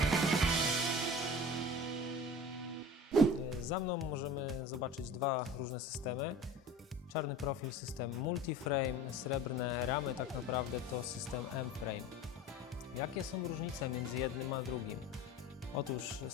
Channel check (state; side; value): normal; both; correlation 0.37